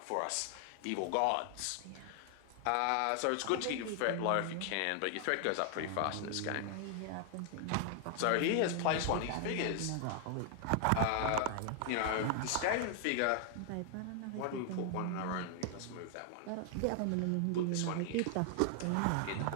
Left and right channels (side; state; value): both; different; correlation 0.00